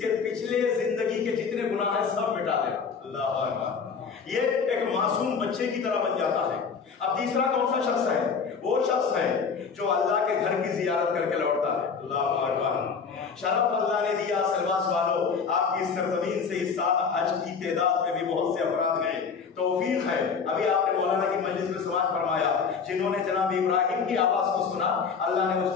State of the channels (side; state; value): right; quieter; 5.8 dB